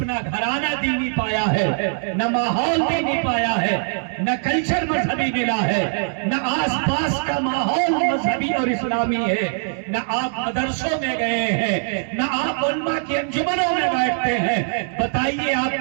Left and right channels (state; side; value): silent; left; digital silence